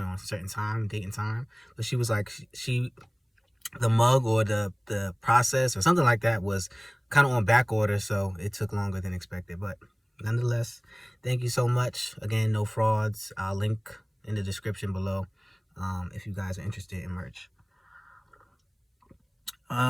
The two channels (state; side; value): identical; both; correlation 1.00